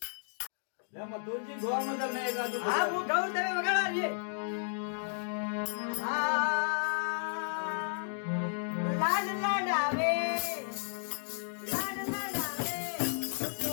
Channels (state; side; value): silent; right; digital silence